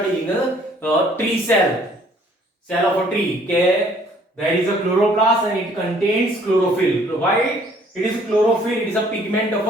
in the tree cell of a tree. Okay. There is a chloroplast and it contains chlorophyll. Why? It is chlorophyll, it is a pigment of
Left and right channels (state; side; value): normal; both; correlation 0.59